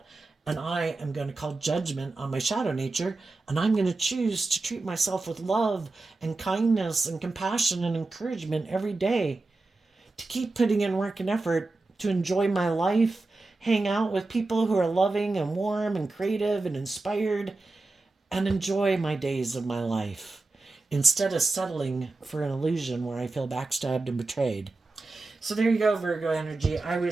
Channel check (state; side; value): quieter; left; 3.3 dB